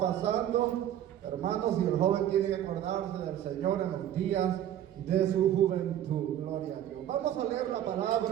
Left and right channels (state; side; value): quieter; left; 11.3 dB